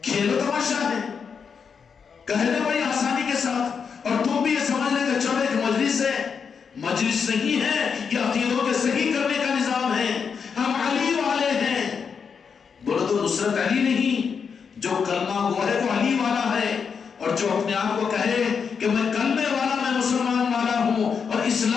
کھیل و تماشا ہے, کہنے بڑی آسانی کے ساتھ, اور تم بھی یہ سمجھ لیں کہ چلو ایک مجلس ہے. مجلس نہیں ہے, یہ عقیدوں کے صحیح کرنے کا نظام ہے. ہم علی والے ہیں. بولو تو نصرت علی نہیں, جو کلمہ گو ہے وہ علی والا ہے, اور جو اپنے آپ کو کہے کہ میں کلمے والا, میں مسلمان والا ہوں اور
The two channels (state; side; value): quieter; right; 6.2 dB